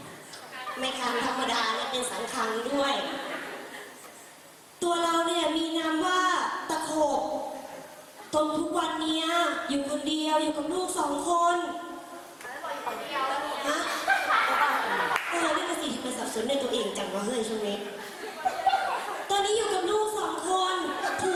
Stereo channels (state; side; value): identical; both; correlation 1.00